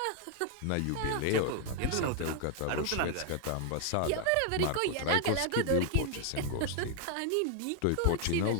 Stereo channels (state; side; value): different; both; correlation 0.00